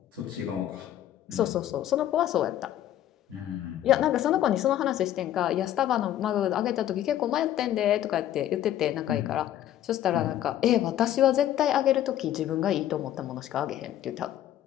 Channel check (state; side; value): quieter; right; 12.0 dB